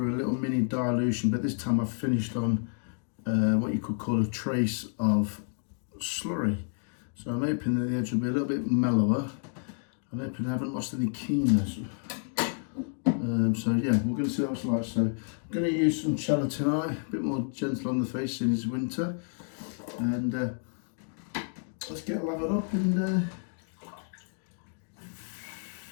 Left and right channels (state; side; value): silent; right; 58 dB below the other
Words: a little mini dilution, but this time I've finished on what you could call a trace of slurry. So I'm hoping that the edge will be a little bit mellower. I'm hoping I haven't lost any keenness. So yeah, we're going to see what it's like. So I'm going to use some cello tonight, a bit more gentle on the face in it's winter. And let's get lathered up and